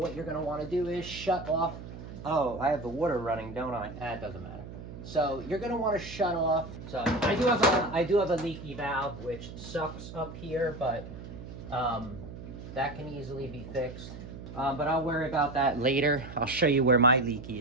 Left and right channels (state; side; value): noise; right; hum, 12 dB below the sound